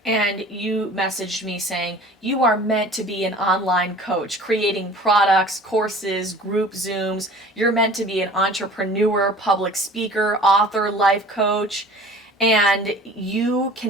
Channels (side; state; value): both; normal; correlation 0.45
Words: And you messaged me saying, you are meant to be an online coach, creating products, courses, group Zooms. You're meant to be an entrepreneur, public speaker, author, life coach. And you